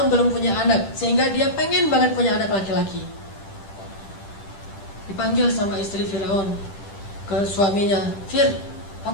belum punya anak, sehingga dia pengen banget punya anak laki-laki. Dipanggil sama istri Firaun ke suaminya, Fir,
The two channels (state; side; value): late; right; 10 ms